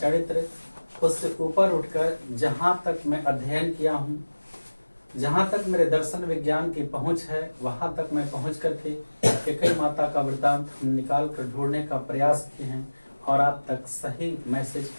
उससे ऊपर उठकर जहाँ तक मैं अध्ययन किया हूँ, जहाँ तक मेरे दर्शन विज्ञान की पहुँच है, वहाँ तक मैं पहुँच करके कैकेयी माता का वृत्तांत हम निकाल कर ढूंढने का प्रयास किए हैं और आप तक सही मैसेज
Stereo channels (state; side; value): inverted; both; correlation -1.00